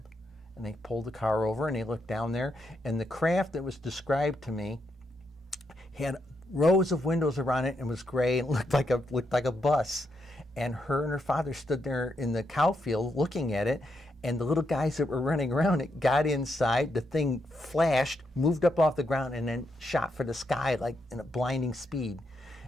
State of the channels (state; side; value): normal; both; correlation 0.80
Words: And they pulled the car over, and they looked down there, and the craft that was described to me had rows of windows around it and was gray and looked like a bus. And her father stood there in the cow field looking at it, And the little guys that were running around it got inside, the thing flashed, moved up off the ground, and then shot for the sky like in a blinding speed.